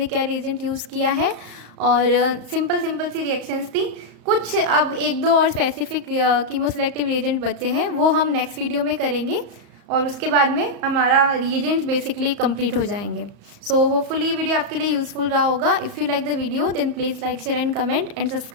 क्या रिएजेंट यूज़ किया है, और सिंपल सी रिएक्शंस थी। कुछ अब एक दो और स्पेसिफिक कीमोसेलेक्टिव रिएजेंट बचे हैं, वो हम नेक्स्ट वीडियो में करेंगे, और उसके बाद में हमारा रिएजेंट बेसिकली कंप्लीट हो जाएंगे। सो होपफुली ये वीडियो आपके लिए यूज़फुल रहा होगा। If you like the video then please like, share and comment and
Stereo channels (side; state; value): left; late; 34 ms